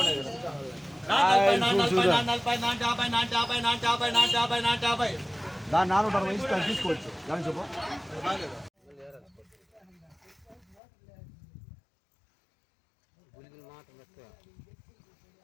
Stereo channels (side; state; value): right; drops out; at 10.8 s